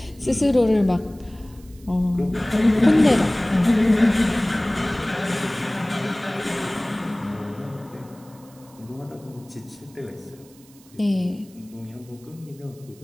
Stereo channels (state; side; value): noise; right; hiss, 27 dB below the sound